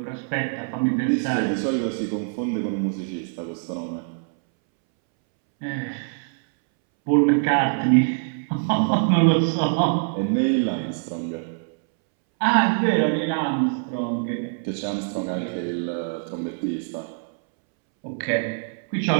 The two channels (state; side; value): silent; left; 63 dB below the other